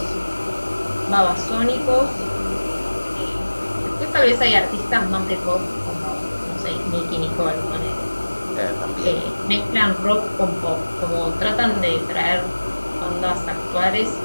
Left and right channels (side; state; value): both; inverted; correlation -1.00